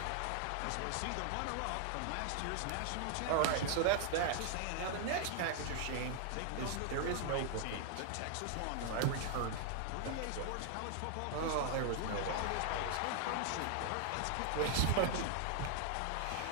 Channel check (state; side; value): different; both; correlation 0.00